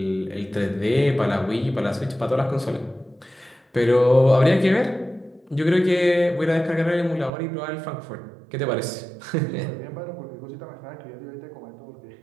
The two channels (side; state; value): left; drops out; at 7.3 s